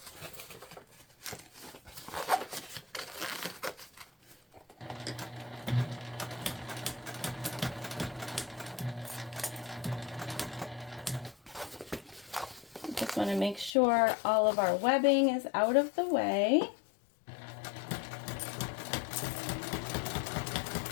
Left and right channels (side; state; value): right; drops out; at 13.7 s